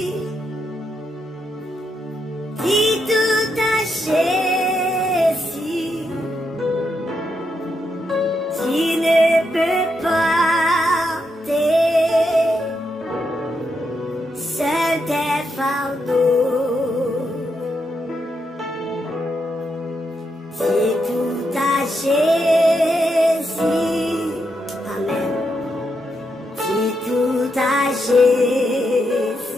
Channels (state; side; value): normal; both; correlation 0.82